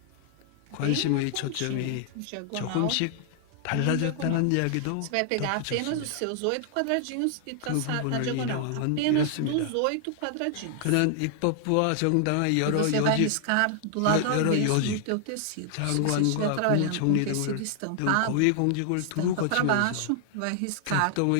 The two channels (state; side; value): different; both; correlation 0.00